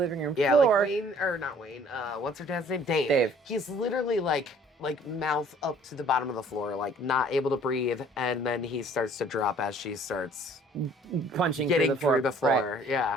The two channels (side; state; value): both; normal; correlation 0.55